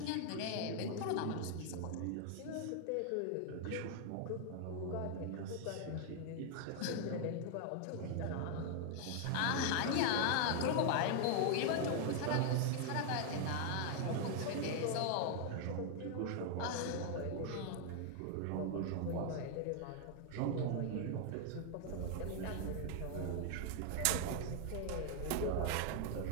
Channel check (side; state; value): both; different; correlation 0.00